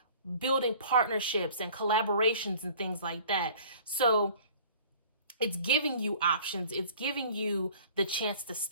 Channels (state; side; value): inverted; both; correlation -0.49